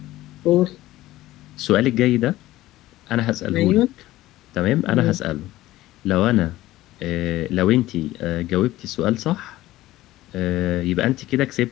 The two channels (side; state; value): right; quieter; 16.2 dB